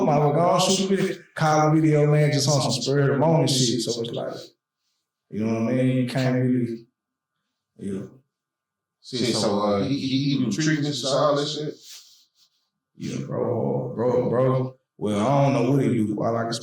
my go on shoot a video, call a video, man, just on some spur of the moment shit. So it's like, you know what I mean? You can't really, yeah. See, so he do treatments and all that shit? Yeah, bro. Well, I don't know what he do. All I can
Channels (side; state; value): both; identical; correlation 1.00